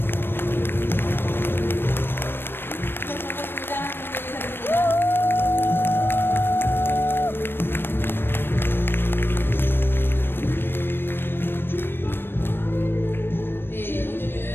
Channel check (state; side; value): late; right; 0.10 ms